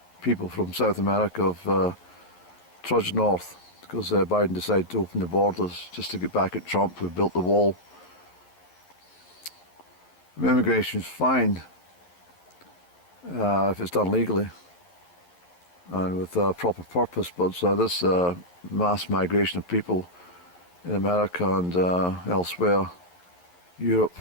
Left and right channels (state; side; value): late; right; 11 ms